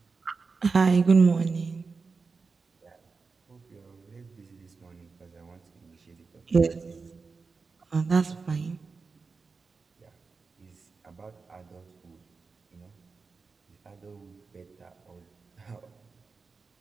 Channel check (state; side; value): quieter; left; 4.6 dB